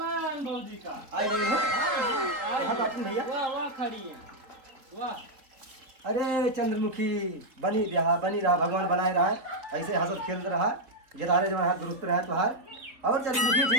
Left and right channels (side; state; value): left; late; 3.8 ms